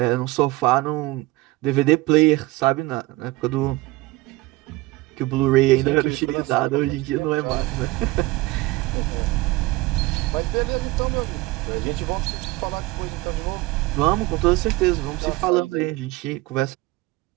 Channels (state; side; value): quieter; left; 20.1 dB